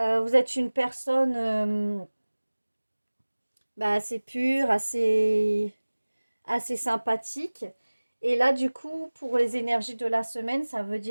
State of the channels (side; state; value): both; inverted; correlation -1.00